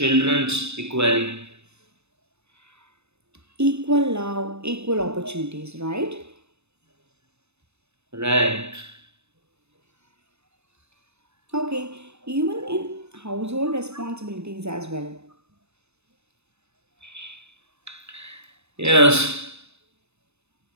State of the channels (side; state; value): left; late; 0.81 ms